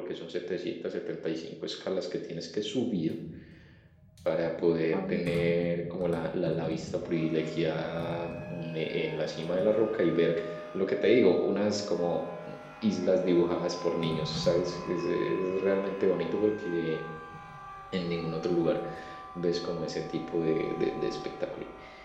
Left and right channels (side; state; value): both; identical; correlation 1.00